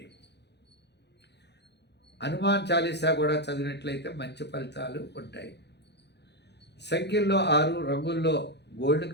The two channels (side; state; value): right; late; 0.50 ms